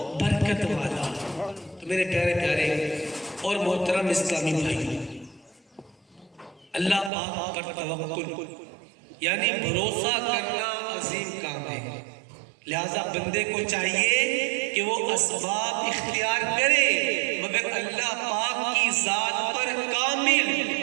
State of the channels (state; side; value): drops out; left; at 7.1 s